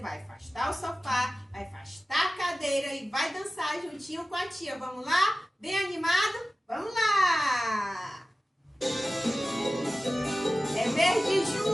vai afastar o sofá, vai afastar a cadeira e vai dançar juntinho com a tia. Vamos lá? Bem animado? Vamos lá! É mês de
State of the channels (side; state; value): both; normal; correlation 0.96